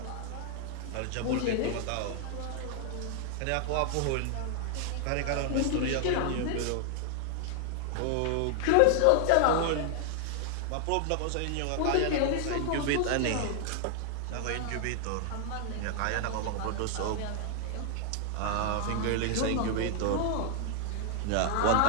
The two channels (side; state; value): both; different; correlation 0.00